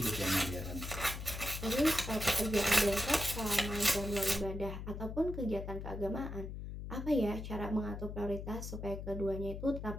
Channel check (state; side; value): noise; left; hum, 7 dB below the sound